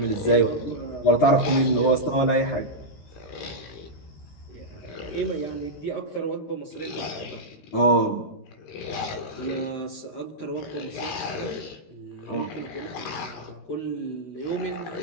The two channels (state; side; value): late; right; 13 ms